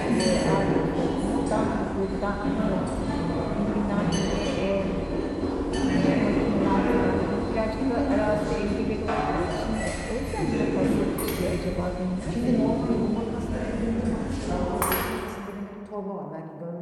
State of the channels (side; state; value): both; identical; correlation 1.00